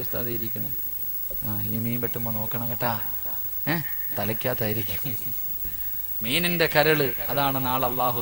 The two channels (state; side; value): identical; both; correlation 1.00